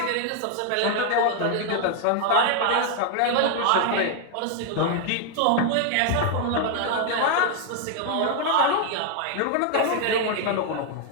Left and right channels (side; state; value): both; different; correlation 0.00